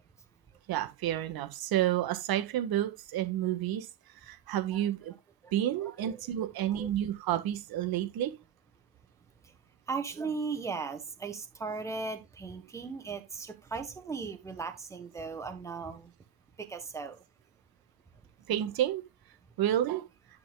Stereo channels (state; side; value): quieter; left; 9.9 dB